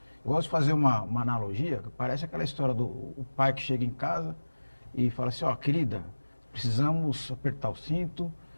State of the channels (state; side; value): inverted; both; correlation -1.00